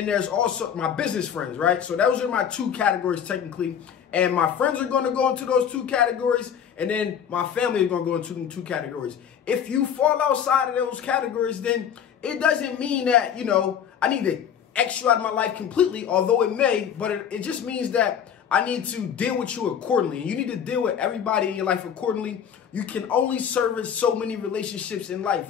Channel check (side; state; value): right; quieter; 8.4 dB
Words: there's also my business friends, right? So those are my two categories technically. And my friends are going to go into those two categories. And then my family is going to go into them two categories. If you fall outside of those categories, then it doesn't mean that, I need to X you out of my life completely, although it may, but it just means that I need to deal with you accordingly. And you need to deal with everybody in your life accordingly. You can only service so many relationships in life,